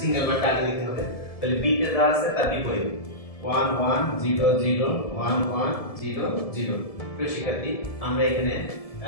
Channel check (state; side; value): late; right; 1.7 ms